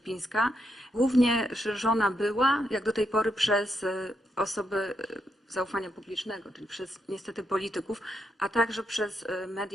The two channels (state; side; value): normal; both; correlation 0.81